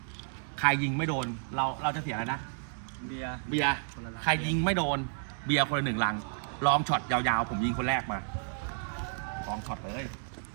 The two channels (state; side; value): silent; left; digital silence